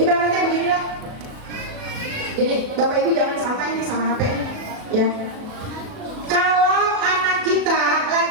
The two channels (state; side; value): late; left; 37 ms